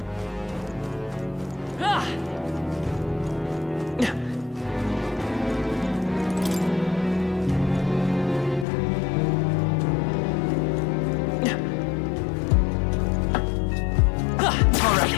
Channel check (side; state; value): right; drops out; at 8.7 s